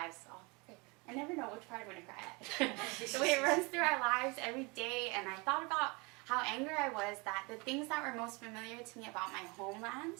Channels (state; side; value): quieter; left; 28.2 dB